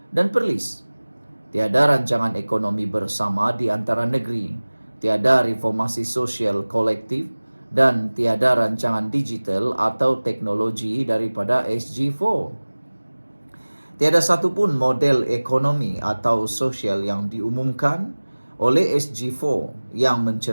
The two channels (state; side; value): inverted; both; correlation -1.00